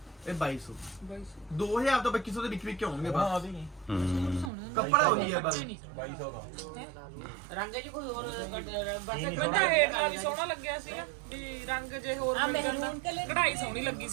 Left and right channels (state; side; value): drops out; left; at 4.5 s